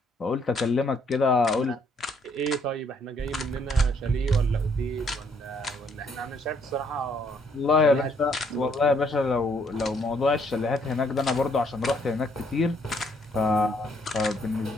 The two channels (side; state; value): both; normal; correlation 0.68